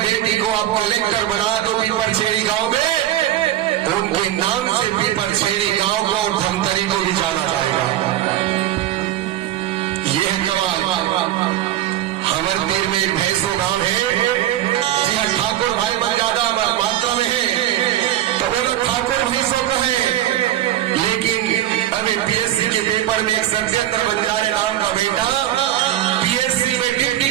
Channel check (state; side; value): quieter; left; 13.0 dB